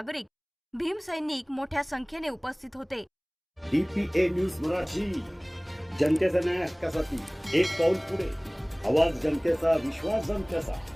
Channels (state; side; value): identical; both; correlation 1.00